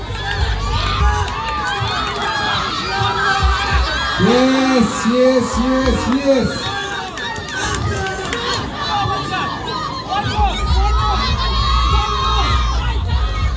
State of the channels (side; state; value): both; identical; correlation 1.00